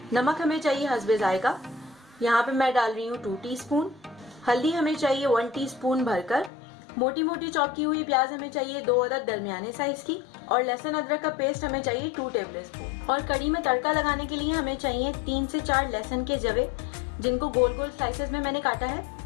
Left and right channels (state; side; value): drops out; right; at 6.5 s